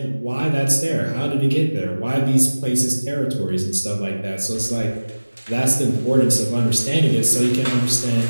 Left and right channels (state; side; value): inverted; both; correlation -1.00